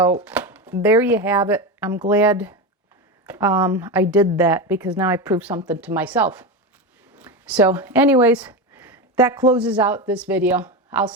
there you have it. I'm glad I did that, because now I proved something to myself. So anyways, that closes out this video. I'll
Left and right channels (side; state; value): both; normal; correlation 0.17